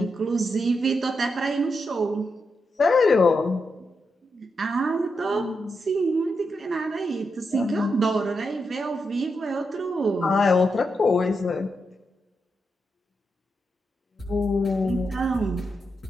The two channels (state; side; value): normal; both; correlation 0.85